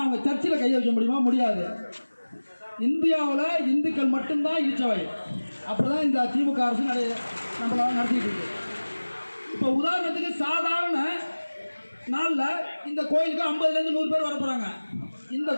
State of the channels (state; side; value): inverted; both; correlation -1.00